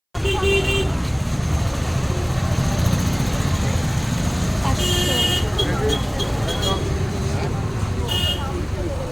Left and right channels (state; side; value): identical; both; correlation 1.00